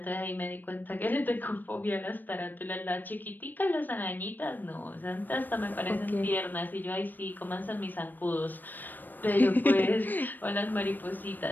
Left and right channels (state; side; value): late; right; 0.090 ms